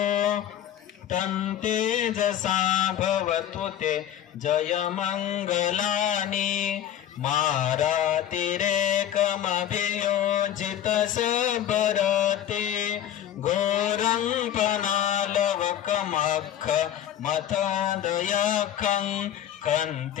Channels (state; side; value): quieter; right; 10.9 dB